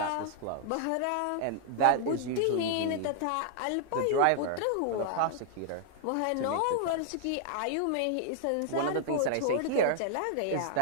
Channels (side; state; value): both; different; correlation -0.01